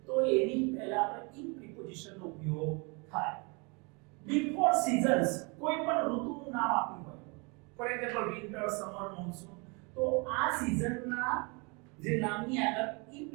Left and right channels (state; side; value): quieter; left; 30.8 dB